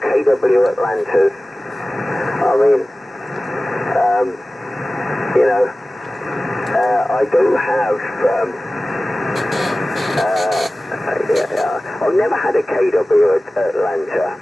KW Atlantas. I mean, you know, I do have, I've never had a KW Atlanta.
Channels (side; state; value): both; normal; correlation 0.96